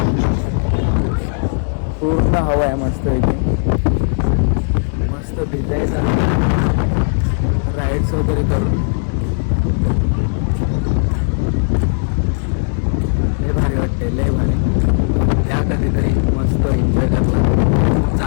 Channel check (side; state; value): right; silent; 62 dB below the other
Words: पूर्ण हवा आहे मस्त इथे. मस्त भिजायचं, राईड्स वगैरे करून लय भारी वाटते, लय भारी. त्या कधीतरी मस्त एन्जॉय करला, खूप